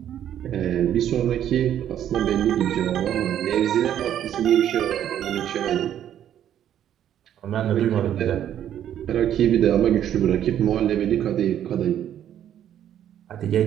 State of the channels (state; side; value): quieter; left; 10.5 dB